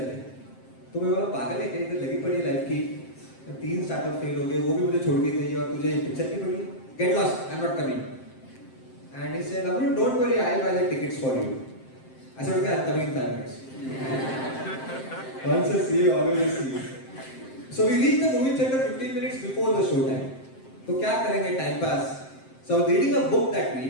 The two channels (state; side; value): late; right; 7.6 ms